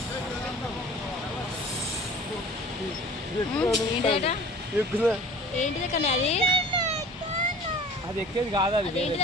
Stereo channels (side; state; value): both; normal; correlation 0.45